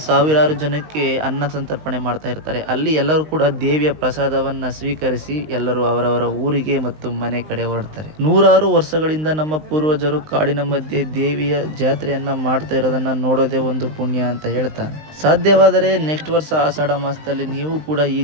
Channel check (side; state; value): left; late; 19 ms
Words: ಸಾವಿರಾರು ಜನಕ್ಕೆ ಅನ್ನ ಸಂತರ್ಪಣೆ ಮಾಡ್ತಾ ಇರ್ತಾರೆ. ಅಲ್ಲಿ ಎಲ್ಲರೂ ಕೂಡ ದೇವಿಯ ಪ್ರಸಾದವನ್ನ ಸ್ವೀಕರಿಸಿ ಎಲ್ಲರೂ ಅವರವರ ಊರಿಗೆ ಮತ್ತು ಮನೆ ಕಡೆ ಹೊರಡ್ತಾರೆ. ನೂರಾರು ವರ್ಷಗಳಿಂದ ನಮ್ಮ ಪೂರ್ವಜರು ಕಾಡಿನ ಮಧ್ಯೆ ದೇವಿಯ ಜಾತ್ರೆಯನ್ನ ಮಾಡ್ತಾ ಇರೋದನ್ನ ನೋಡೋದೇ ಒಂದು ಪುಣ್ಯ ಅಂತ ಹೇಳ್ತಾ, ಸಾಧ್ಯವಾದರೆ ನೆಕ್ಸ್ಟ್ ವರ್ಷ ಆಷಾಢ ಮಾಸದಲ್ಲಿ ನೀವು ಕೂಡ ಈ